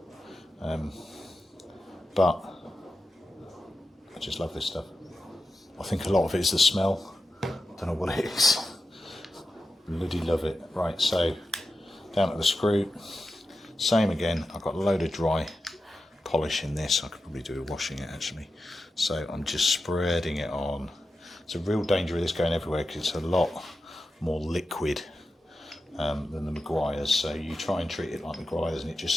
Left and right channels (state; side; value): normal; both; correlation 0.91